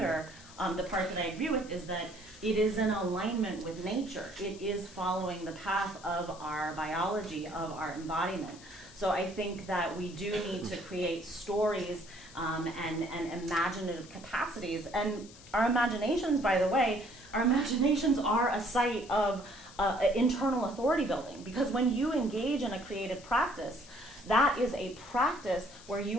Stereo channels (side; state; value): left; noise; hiss, 20 dB below the sound